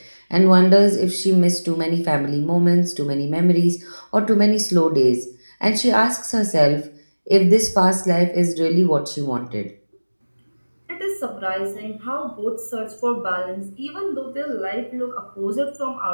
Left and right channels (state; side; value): inverted; both; correlation -1.00